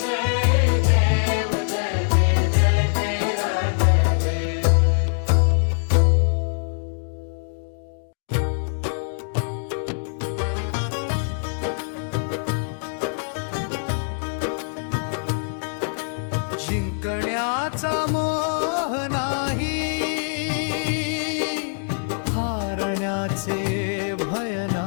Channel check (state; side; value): silent; right; digital silence